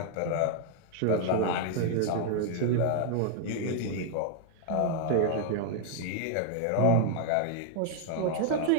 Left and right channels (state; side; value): different; both; correlation 0.00